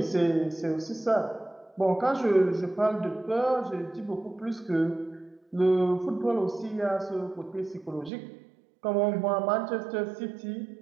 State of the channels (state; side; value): drops out; left; at 8.1 s